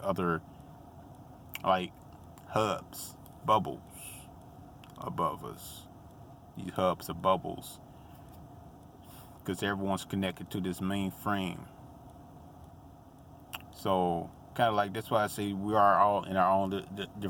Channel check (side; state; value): both; identical; correlation 1.00